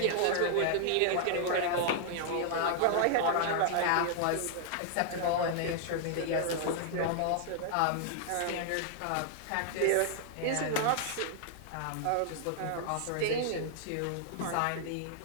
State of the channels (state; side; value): different; both; correlation 0.00